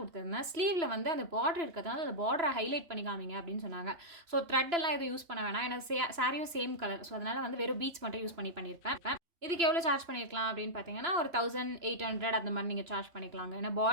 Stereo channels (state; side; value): late; left; 2.9 ms